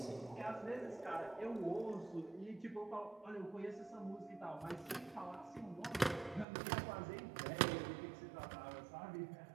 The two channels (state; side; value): drops out; left; at 6.5 s